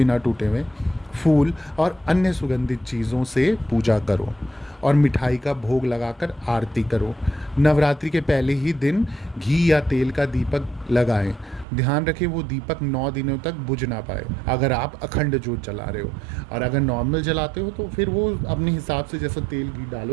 टूटे हुए, फूल और अन्य सुगंधित चीज़ों से पूजा करो और मिठाई का भोग लगाकर आरती करो। नवरात्रि के पहले ही दिन घी या तेल का दीपक लगाएं। ध्यान रखें वो दीपक 9 दिनों तक बुझ ना पाए अगर आप अखंड जोत जला रहे हो, और अगर नॉर्मल जलाते हो तो फिर वो अपने हिसाब से, जैसा तेल घी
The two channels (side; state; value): left; drops out; at 11.7 s